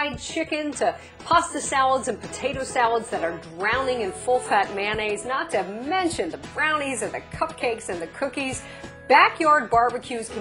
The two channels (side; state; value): both; identical; correlation 1.00